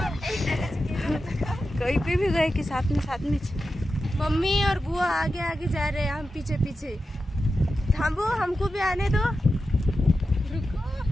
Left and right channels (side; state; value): both; normal; correlation 0.91